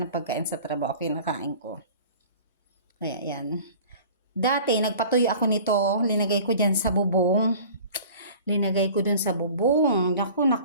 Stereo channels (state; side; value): inverted; both; correlation -0.44